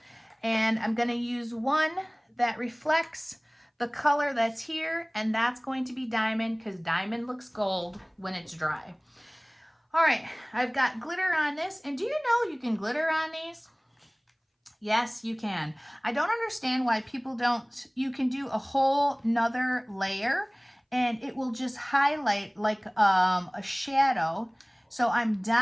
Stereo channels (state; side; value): identical; both; correlation 1.00